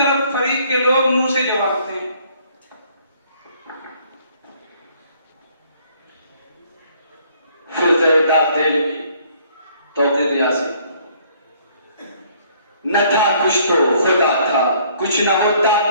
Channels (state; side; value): inverted; both; correlation -0.61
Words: फरीक के लोग नू से जवाब दें। न था कुछ तो खुदा था, कुछ न होता